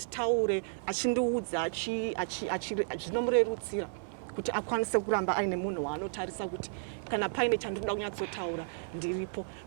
achindiudza zvinomurerutsira kuti akwanise kuramba aine munhu waanotarisa kuti kana paine chandinoda kunyatsotaura ndiripo.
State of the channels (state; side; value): silent; left; 56 dB below the other